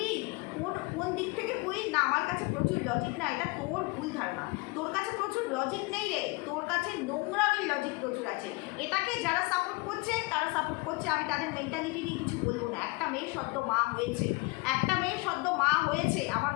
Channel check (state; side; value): quieter; right; 26.1 dB